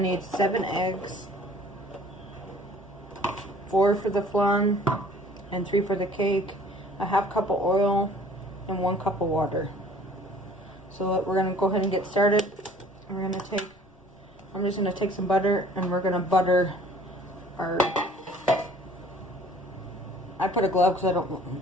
7 eggs, 4 for the flan and 3 for the cake, a 1/2 cup of oil, and 1 cup of water. So we're gonna go ahead and get started. I'm just gonna take some butter and we're gonna butter our. I put a glove because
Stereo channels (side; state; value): left; noise; rumble, 30 dB below the sound